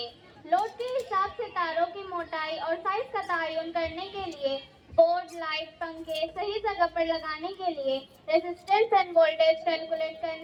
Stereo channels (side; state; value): both; identical; correlation 1.00